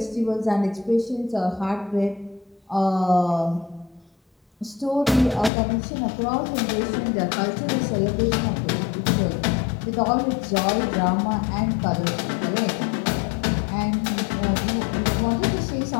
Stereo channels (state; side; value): drops out; right; at 5.5 s